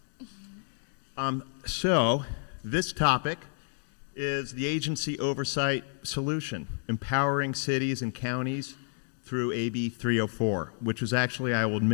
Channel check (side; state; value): right; silent; 58 dB below the other